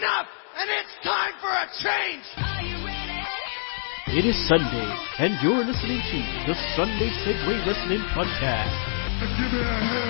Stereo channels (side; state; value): right; silent; digital silence